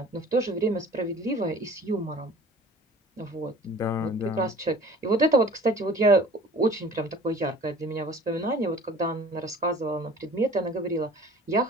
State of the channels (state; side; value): normal; both; correlation 0.46